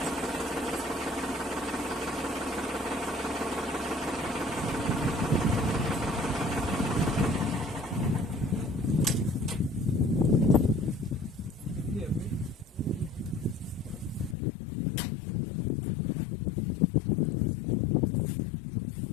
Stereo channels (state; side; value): drops out; right; at 14.4 s